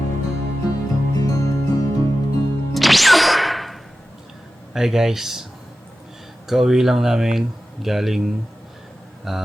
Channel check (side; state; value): both; normal; correlation 0.94